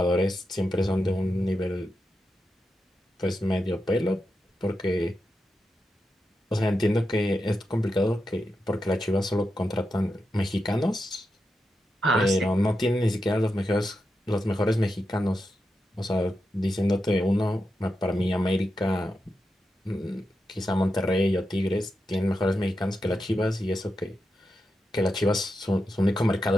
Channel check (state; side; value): normal; both; correlation 0.88